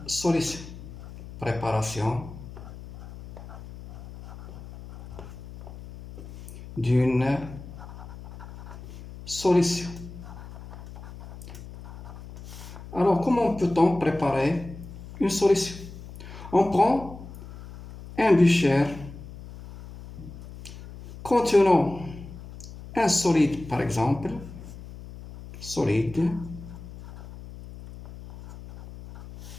solution. Préparation d'une solution. Alors, comment peut-on préparer une solution? On prend un becher contenant un solide, par exemple, solide.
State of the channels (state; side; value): noise; left; hum, 14 dB below the sound